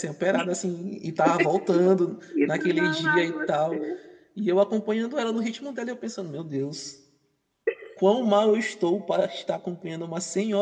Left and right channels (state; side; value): identical; both; correlation 1.00